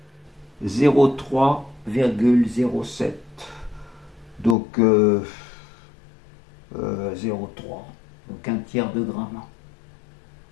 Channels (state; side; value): drops out; right; at 4.5 s